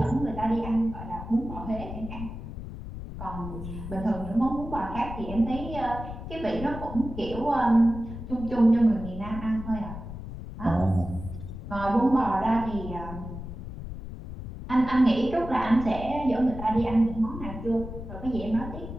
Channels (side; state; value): left; noise; rumble, 9 dB below the sound